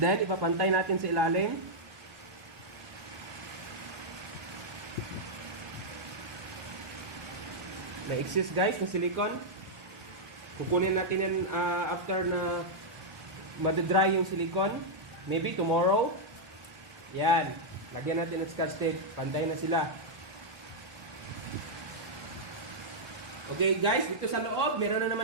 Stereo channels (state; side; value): late; left; 1.2 ms